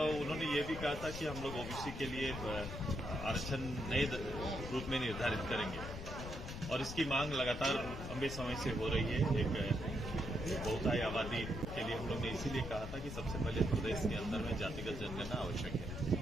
उन्होंने ये भी कहा था कि हम लोग ओबीसी के लिए आरक्षण नए रूप में निर्धारित करेंगे और इसकी मांग लगातार लंबे समय से हो रही है। एक बहुतायी आबादी के लिए हम लोग ने इसीलिए कहा था कि सबसे पहले प्रदेश के अंदर में जातिगत जनगणना आवश्यक है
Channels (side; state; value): left; noise; rumble, 8 dB below the sound